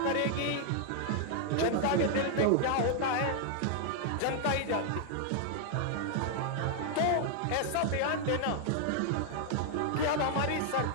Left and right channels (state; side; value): different; both; correlation 0.00